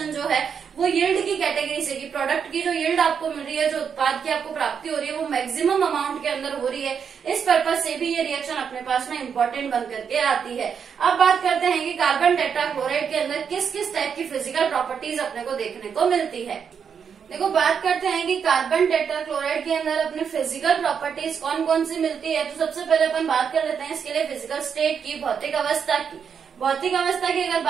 जो है वो यील्ड की कैटेगरी से, कि प्रोडक्ट की जो यील्ड आपको मिल रही है, जो उत्पाद की आपको प्राप्ति हो रही है वो मैक्सिमम अमाउंट के अंदर हो रही है, इस पर्पज से भी ये रिएक्शन अपने पास में इम्पोर्टेंट बन करके आती है। अब बात करते हैं कि कार्बन टेट्राक्लोराइड के अंदर किस किस टाइप की फिजिकल प्रॉपर्टीज अपने को देखने को मिलती है। देखो बात करते हैं कि कार्बन टेट्राक्लोराइड के अंदर अपने फिजिकल प्रॉपर्टीज कौन कौन सी मिलती है। तो सबसे पहले अपन बात कर लेते हैं इसके लिए फिजिकल स्टेट की, भौतिक अवस्था की। भौतिक अवस्था की अगर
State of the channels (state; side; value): quieter; left; 7.0 dB